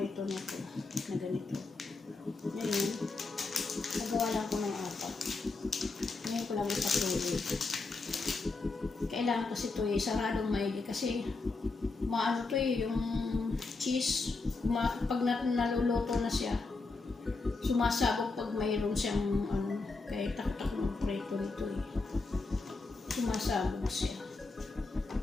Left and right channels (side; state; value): right; quieter; 3.7 dB